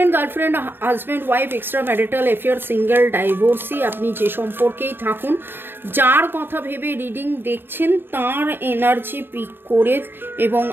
girlfriend, husband, wife, extra marital affair, single, divorcee, আপনি যে সম্পর্কেই থাকুন, যার কথা ভেবে রিডিং দেখছেন তার এনার্জি পিক করে এবং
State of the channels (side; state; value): left; late; 0.098 ms